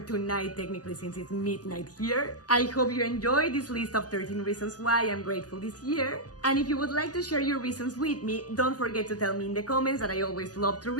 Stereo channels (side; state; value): right; late; 0.67 ms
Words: technically since it's midnight here. I hope you enjoyed this list of 13 reasons why I'm grateful this year. And if you would like to share your reasons with me, don't forget to tell me in the comments, that I always love to